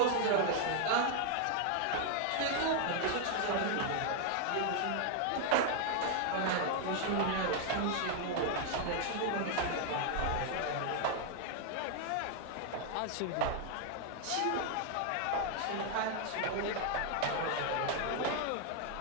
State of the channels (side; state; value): both; different; correlation 0.00